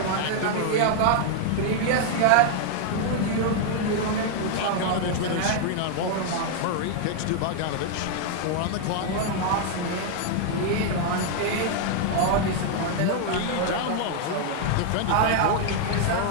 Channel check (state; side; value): different; both; correlation 0.00